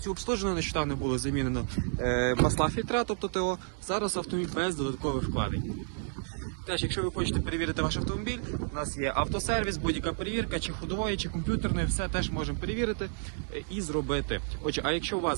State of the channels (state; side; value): silent; left; digital silence